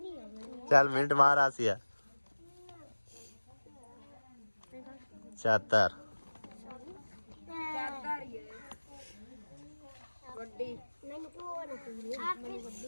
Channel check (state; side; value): inverted; both; correlation -1.00